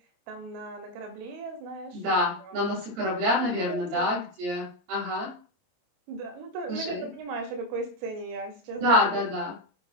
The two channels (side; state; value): left; late; 26 ms